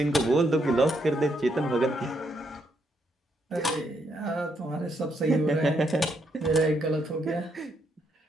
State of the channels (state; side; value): normal; both; correlation 0.76